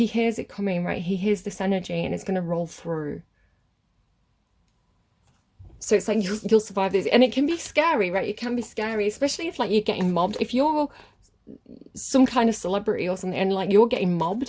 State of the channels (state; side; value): identical; both; correlation 1.00